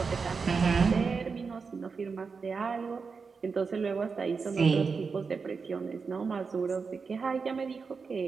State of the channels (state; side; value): quieter; left; 5.1 dB